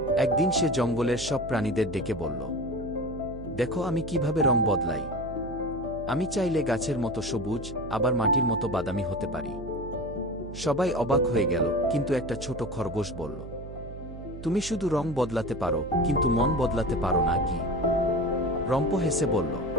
একদিন সে জঙ্গলের সব প্রাণীদের ডেকে বলল, দেখো আমি কিভাবে রং বদলাই। আমি চাইলে গাছের মতো সবুজ, আবার মাটির মতো বাদামি হতে পারি। সবাই অবাক হয়ে গেল, কিন্তু একটা ছোট খরগোশ বলল, তুমি শুধু রং বদলাতে পারো, কিন্তু মন বদলাতে পারো না কি? রম্প হেসে বলল,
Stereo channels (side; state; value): right; noise; hum, 12 dB below the sound